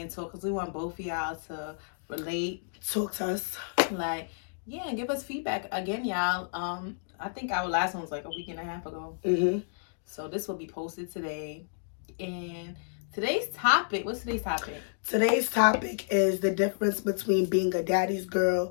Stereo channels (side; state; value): right; silent; digital silence